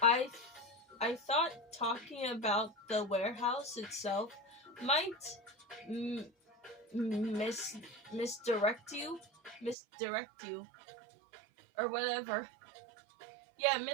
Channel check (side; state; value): left; drops out; at 9.8 s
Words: thought talking about the warehouse itself might misdirect you, or whatever. Yeah,